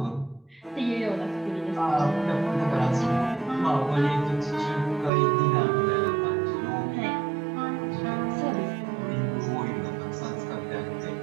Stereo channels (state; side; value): drops out; left; at 5.1 s